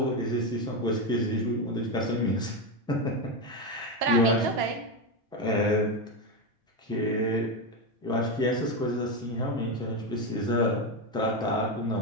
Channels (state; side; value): normal; both; correlation 0.11